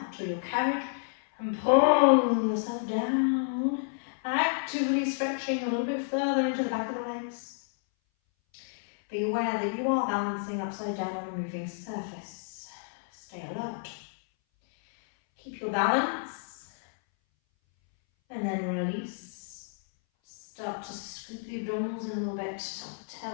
or your carriage and pull yourself down, actively stretching a little bit further into the back of the legs. Be aware that you are balancing upside down on a moving surface. Stay alert. Keep your balance and then release. Start to scoop the abdominals in a little bit,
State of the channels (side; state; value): right; silent; 58 dB below the other